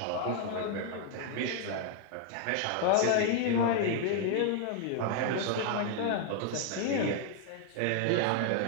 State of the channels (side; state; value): both; different; correlation 0.00